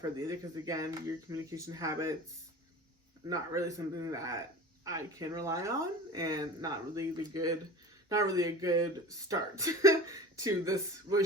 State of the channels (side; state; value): both; normal; correlation 0.36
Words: either, because again, your communication habits, not really something that I can rely on, and not really a good start to this